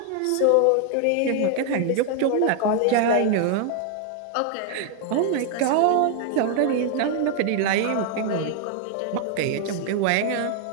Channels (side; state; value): both; different; correlation 0.00